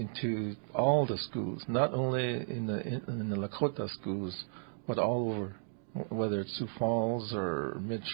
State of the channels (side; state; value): left; silent; digital silence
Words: all the schools, not only in the Lakota schools, but all over, whether it's Sioux Falls or